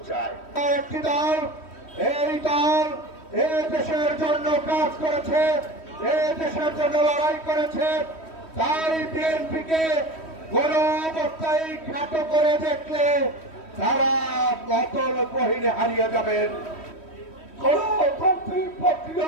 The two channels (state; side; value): late; right; 3.1 ms